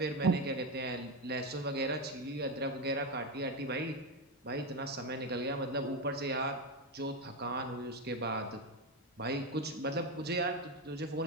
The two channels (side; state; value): both; normal; correlation 0.12